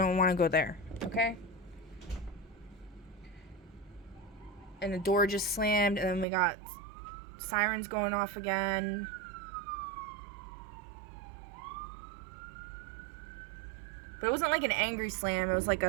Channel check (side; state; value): left; drops out; at 6.2 s